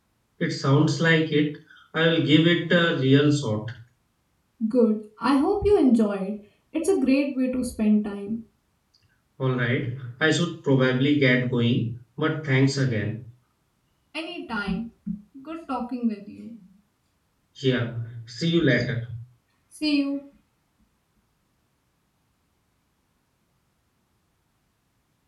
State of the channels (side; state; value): both; identical; correlation 1.00